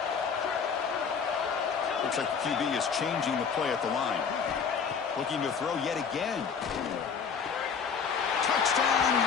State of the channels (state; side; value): quieter; right; 6.3 dB